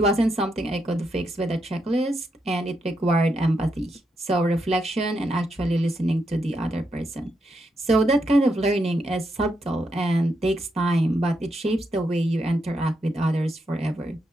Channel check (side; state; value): both; normal; correlation 0.81